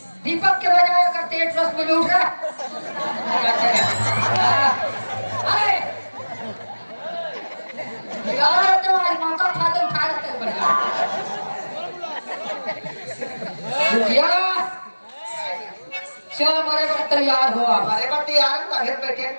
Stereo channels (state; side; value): inverted; both; correlation -1.00